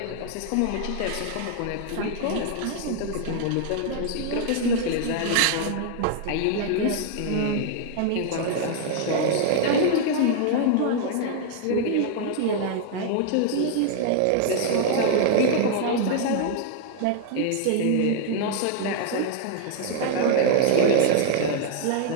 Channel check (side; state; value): both; different; correlation 0.00